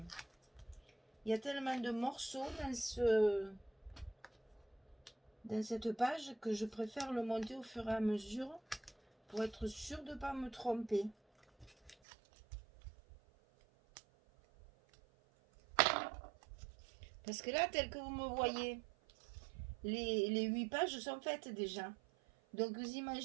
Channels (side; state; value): left; drops out; at 12.0 s